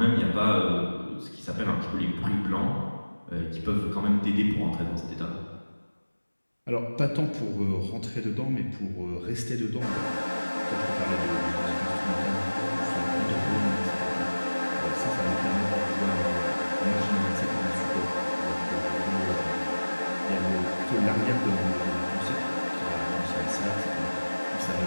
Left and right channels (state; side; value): inverted; both; correlation -1.00